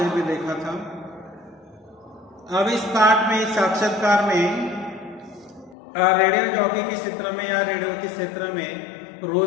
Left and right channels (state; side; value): drops out; right; at 5.8 s